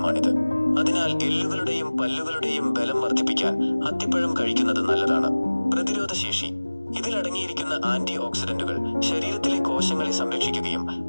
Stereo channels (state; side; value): inverted; both; correlation -1.00